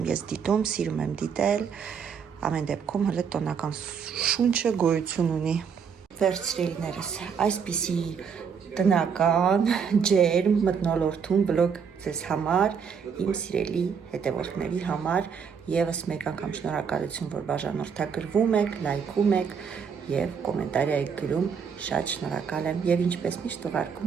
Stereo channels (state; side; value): quieter; left; 6.6 dB